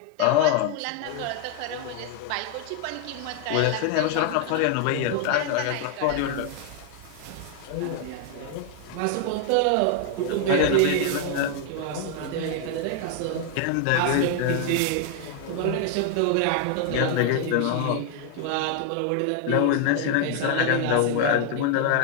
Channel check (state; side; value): different; both; correlation 0.00